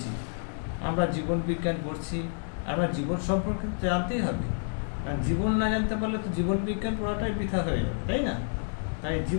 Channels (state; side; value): silent; right; digital silence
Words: আমরা জীবন বিজ্ঞান পড়ছি, আমরা জীবন সম্পর্কে জানতেই হবে। আর জীবন না জানতে পারলে তো জীবন বিজ্ঞান পড়াটাই বৃথা হয়ে যাবে, তাই না? তাই